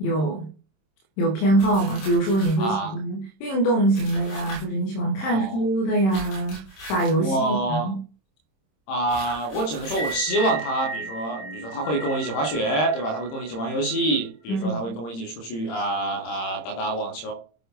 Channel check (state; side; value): late; right; 26 ms